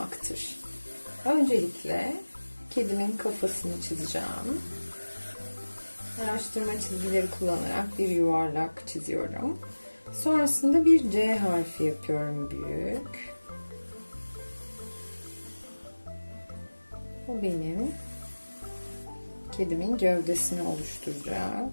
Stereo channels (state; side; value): inverted; both; correlation -1.00